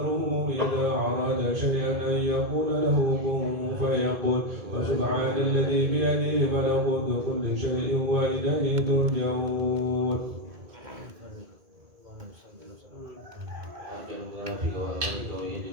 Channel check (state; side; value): late; left; 2.1 ms